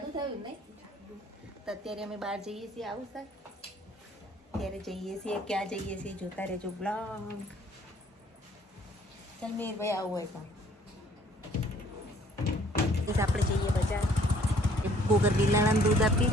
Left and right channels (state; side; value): normal; both; correlation 0.59